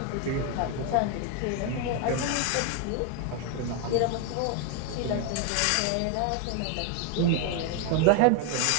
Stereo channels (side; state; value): both; different; correlation 0.01